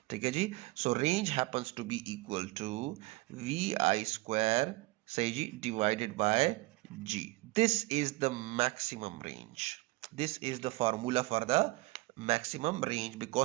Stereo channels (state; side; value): quieter; left; 21.2 dB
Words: ठीक है जी, so range happens to be equal to vi square सही जी divided by g. This is the maximum range. This is the formula for the maximum range,